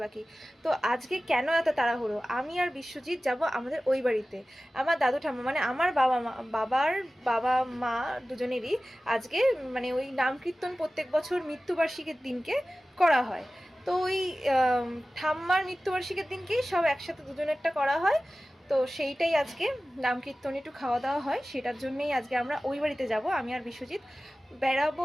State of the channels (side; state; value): both; normal; correlation 0.96